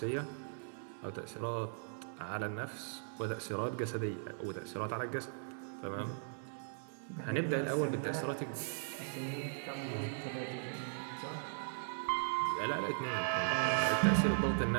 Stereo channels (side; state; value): left; silent; 52 dB below the other